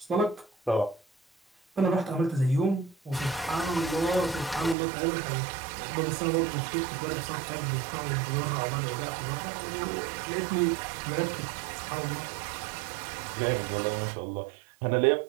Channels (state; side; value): drops out; left; at 4.8 s